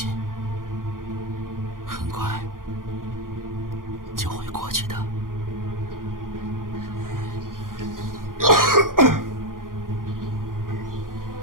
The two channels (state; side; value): late; left; 0.90 ms